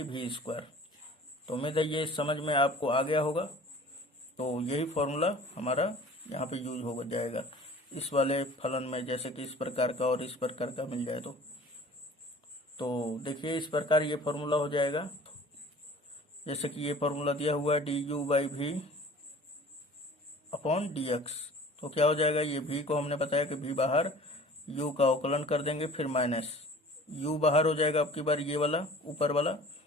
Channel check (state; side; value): normal; both; correlation 0.46